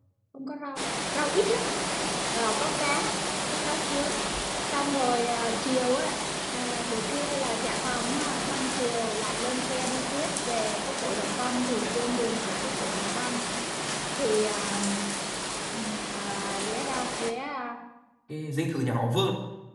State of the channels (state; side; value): identical; both; correlation 1.00